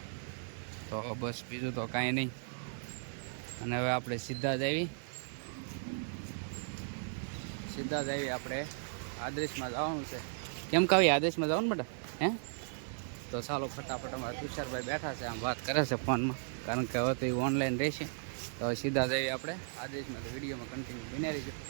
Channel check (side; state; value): left; silent; digital silence